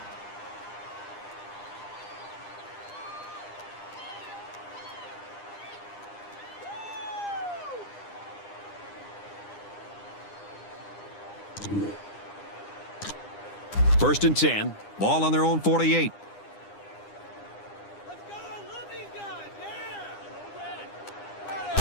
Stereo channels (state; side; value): late; right; 9.9 ms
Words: First and 10. Ball on their own 48. Let's go. I love these guys. Yeah.